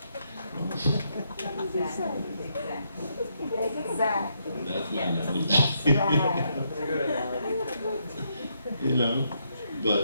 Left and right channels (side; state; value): both; inverted; correlation -0.77